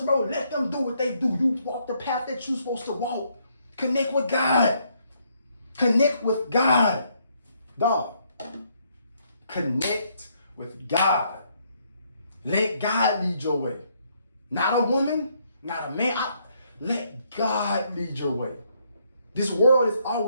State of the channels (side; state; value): both; inverted; correlation -0.71